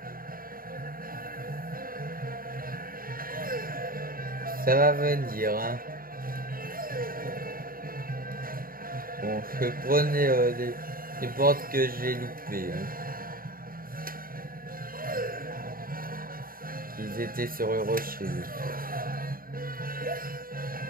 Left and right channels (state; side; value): late; left; 0.42 ms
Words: Ça va venir, hein. Bon, je prenais les portes que j'ai loupées. Hein. Ils étaient sur le rocher.